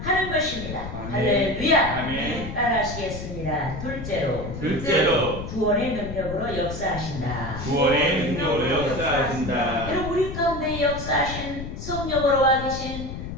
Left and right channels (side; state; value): left; noise; rumble, 8 dB below the sound